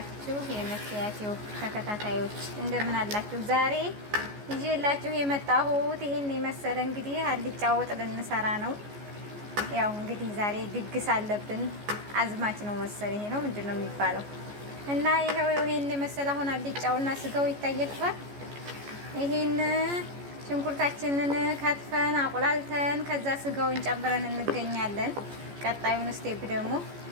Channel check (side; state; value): left; late; 14 ms